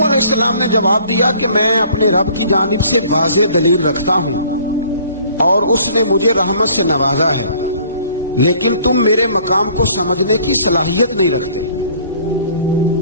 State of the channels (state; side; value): inverted; both; correlation -0.55